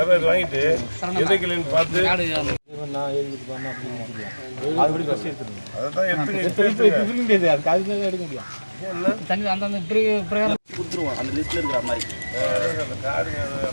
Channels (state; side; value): inverted; both; correlation -1.00